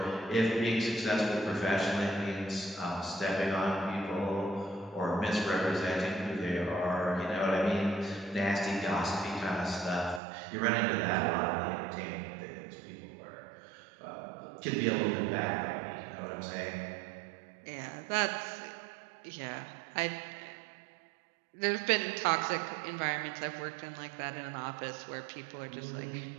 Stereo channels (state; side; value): drops out; left; at 10.2 s